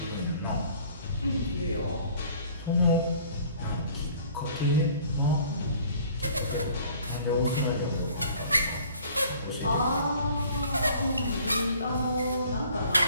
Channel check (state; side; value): inverted; both; correlation -0.53